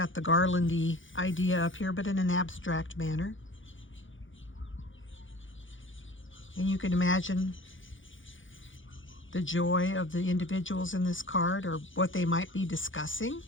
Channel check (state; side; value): late; right; 0.56 ms